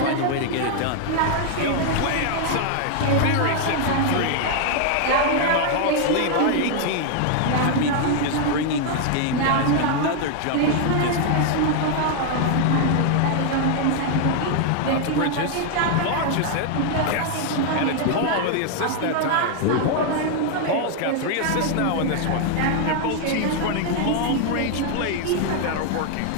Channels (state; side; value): different; both; correlation 0.00